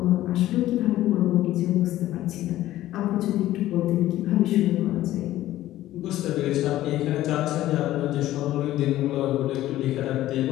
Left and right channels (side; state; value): right; quieter; 14.5 dB